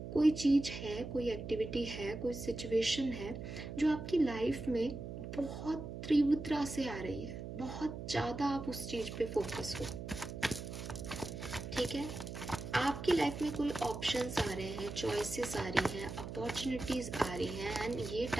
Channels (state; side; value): noise; right; hum, 8 dB below the sound